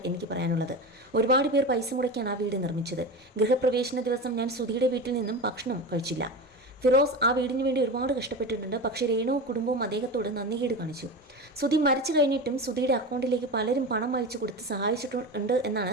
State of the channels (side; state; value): both; normal; correlation 0.26